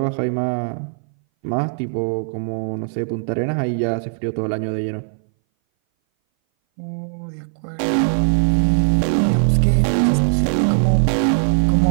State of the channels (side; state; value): left; silent; 60 dB below the other